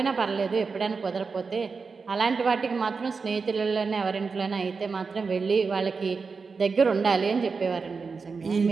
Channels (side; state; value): left; quieter; 4.8 dB